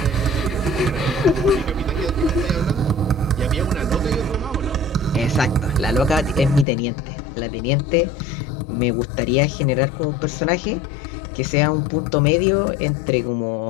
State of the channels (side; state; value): right; drops out; at 6.7 s